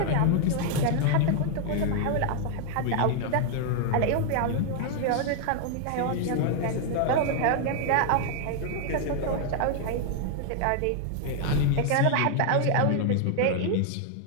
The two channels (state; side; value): different; both; correlation 0.00